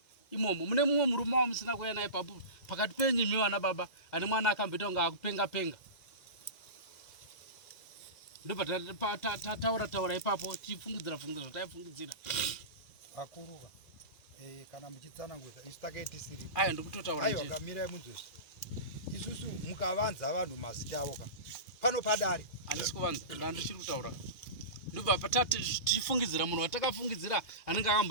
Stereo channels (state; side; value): late; right; 2.1 ms